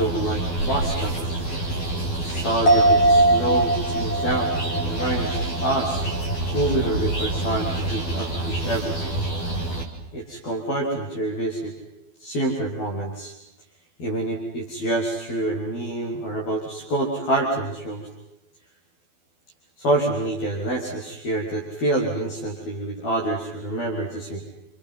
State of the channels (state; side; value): late; right; 12 ms